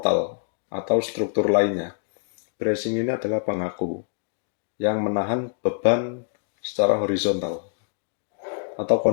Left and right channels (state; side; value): silent; right; digital silence